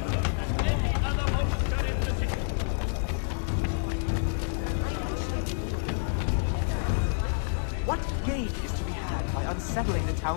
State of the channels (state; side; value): silent; right; digital silence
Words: What gain is to be had by unsettling the